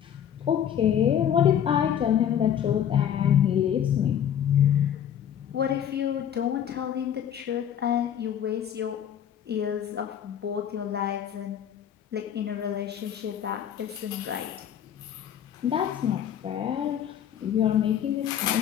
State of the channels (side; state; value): right; quieter; 9.5 dB